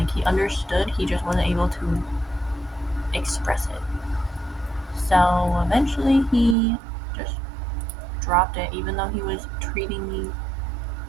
he understood, he just wasn't able to express it. So eventually he just dropped it, even though he was treating me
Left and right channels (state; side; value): drops out; left; at 6.6 s